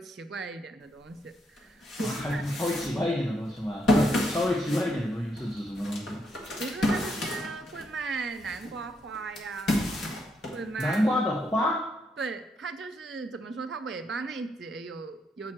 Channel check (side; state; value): both; normal; correlation 0.77